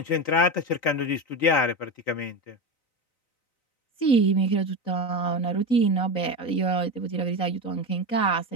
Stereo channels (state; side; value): late; right; 3.9 ms